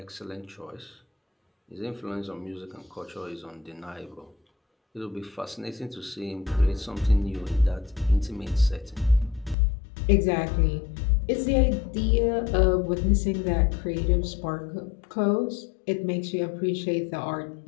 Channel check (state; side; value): drops out; right; at 9.6 s